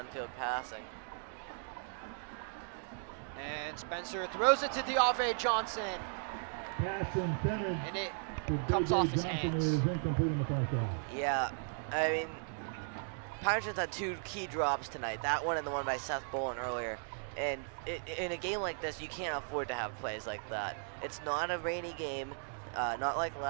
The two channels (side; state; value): left; silent; 53 dB below the other